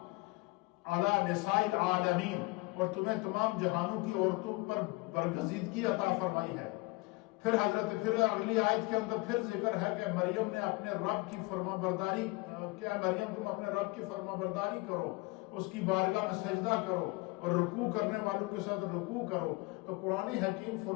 علی نساء العالمین، اور تمہیں تمام جہانوں کی عورتوں پر برگزیدگی عطا فرمائی ہے. پھر اگلی آیت کے اندر پھر ذکر ہے کہ مریم نے اپنے رب کی فرما برداری، کہ مریم تم اپنے رب کی فرما برداری کرو، اس کی بارگاہ میں سجدہ کرو اور رکوع کرنے والوں کے ساتھ رکوع کرو. تو قرآن حکیم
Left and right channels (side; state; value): right; quieter; 24.4 dB